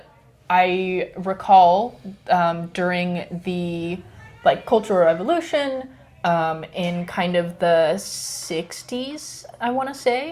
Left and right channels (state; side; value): identical; both; correlation 1.00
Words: I recall during the like Cultural Revolution, in kind of the 60s, I want to